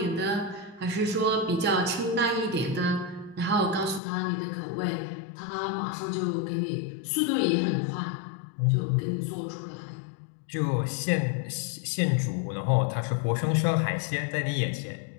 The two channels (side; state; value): right; drops out; at 4.0 s